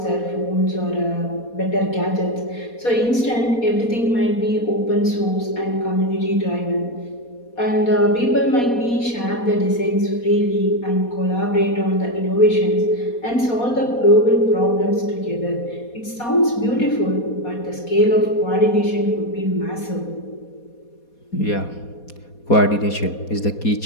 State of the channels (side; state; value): right; late; 4.2 ms